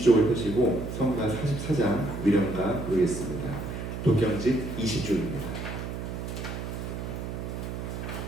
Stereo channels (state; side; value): noise; right; hum, 6 dB below the sound